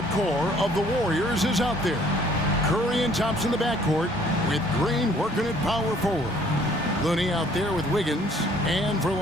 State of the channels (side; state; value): both; normal; correlation 0.59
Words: core of the Warriors is out there. Curry and Thompson in the backcourt, with Green working at power forward. Looney out there with Wiggins, and for